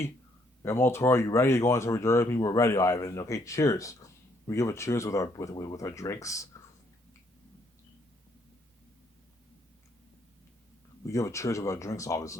Guillermo Toro, are you ready to go on this journey with me? We're ready, Ivan. Okay, cheers. We give a cheers with our drinks. We give a cheers with our drinks,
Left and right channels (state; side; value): normal; both; correlation 0.69